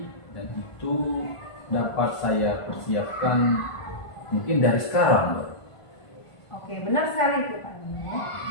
dan itu dapat saya persiapkan mungkin dari sekarang Bu Ari. Oke, benar sekali itu Pak Herman.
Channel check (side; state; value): right; late; 1.5 ms